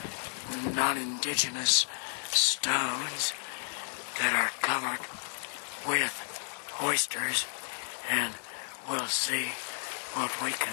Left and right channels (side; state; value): right; silent; 56 dB below the other